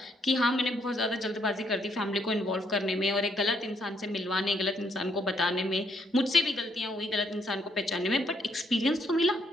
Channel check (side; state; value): both; normal; correlation 0.72